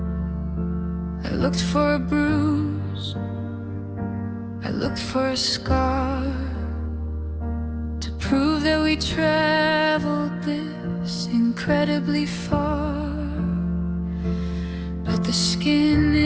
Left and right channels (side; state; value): both; identical; correlation 1.00